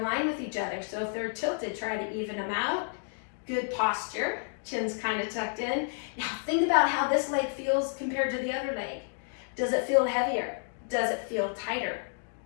line with each other, so if they're tilted, try to even them out. Good posture, chin's kind of tucked in. Now think about how this leg feels compared to the other leg. Does it feel heavier? Does it feel tighter?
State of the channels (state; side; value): silent; right; digital silence